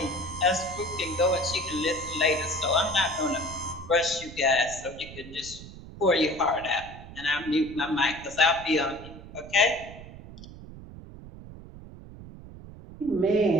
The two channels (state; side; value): noise; right; rumble, 15 dB below the sound